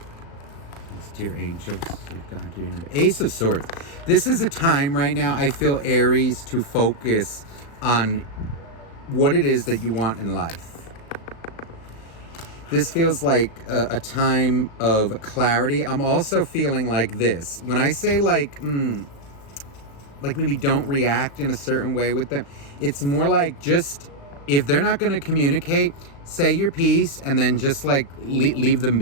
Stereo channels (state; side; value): late; right; 36 ms